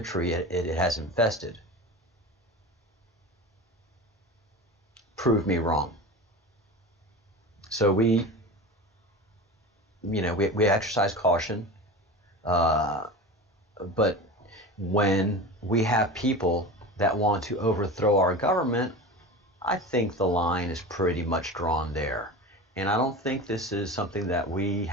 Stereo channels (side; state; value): both; normal; correlation 0.30